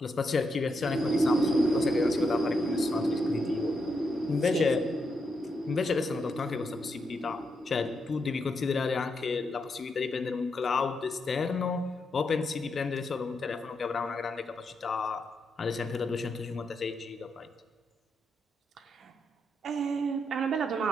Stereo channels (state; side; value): normal; both; correlation 0.82